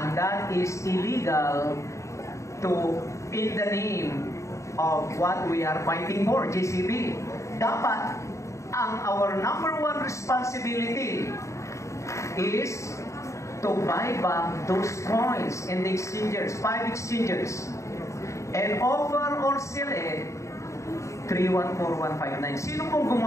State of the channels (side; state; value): right; late; 0.14 ms